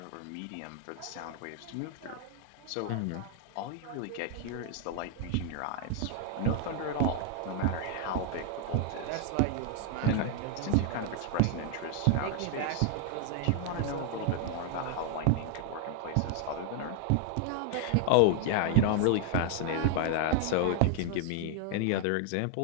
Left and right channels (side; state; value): both; different; correlation 0.00